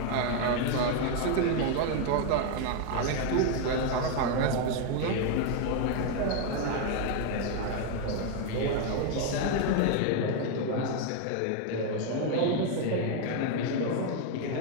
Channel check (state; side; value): different; both; correlation 0.01